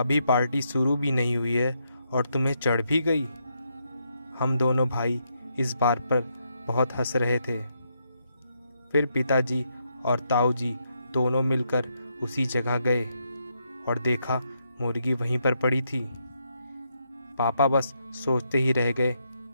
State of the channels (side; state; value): both; inverted; correlation -0.79